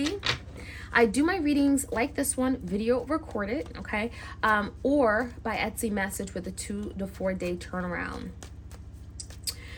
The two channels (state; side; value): identical; both; correlation 1.00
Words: I do my readings like this one, video recorded, okay? Or by Etsy message with a 2 to 4 day turnaround. All